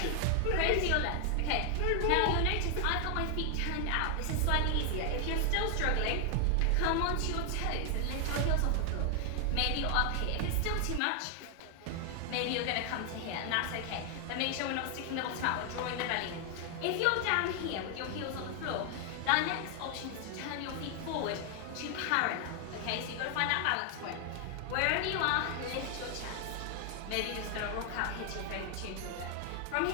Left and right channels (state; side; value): different; both; correlation 0.00